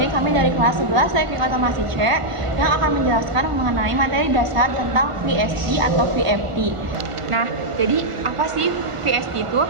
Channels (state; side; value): late; left; 1.5 ms